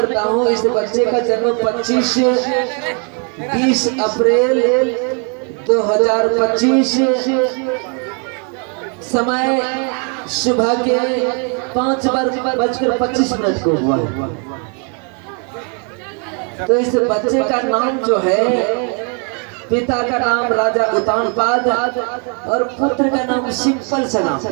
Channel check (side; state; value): left; quieter; 38.4 dB